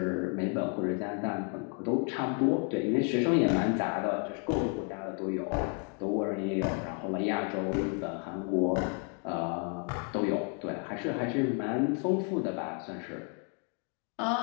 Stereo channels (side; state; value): right; quieter; 40.0 dB